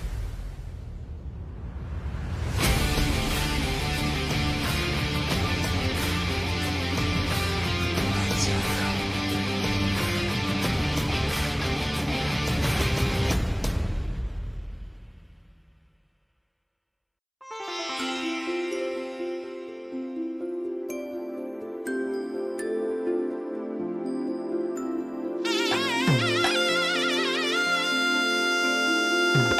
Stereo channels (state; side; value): identical; both; correlation 1.00